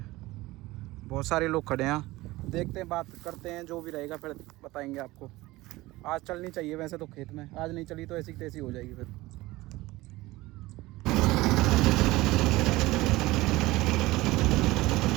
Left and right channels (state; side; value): quieter; left; 19.2 dB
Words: बहुत सारे लोग खड़े हैं। देखते हैं बात करते हैं, जो भी रहेगा फिर बताएंगे आपको। आज चलनी चाहिए वैसे तो खेत में, आज नहीं चली तो ऐसी तैसी हो जाएगी फिर।